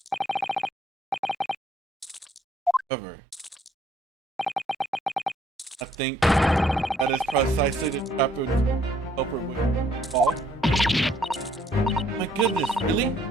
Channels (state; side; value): normal; both; correlation 0.66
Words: However, I think that is precisely the trap of culprit would fall. My goodness, really?